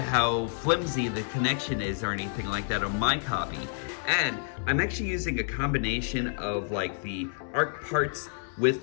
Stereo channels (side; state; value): right; silent; digital silence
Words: flimsy the connection is or anything like that on my copy. And I'm actually using a combination of like the Ark parts with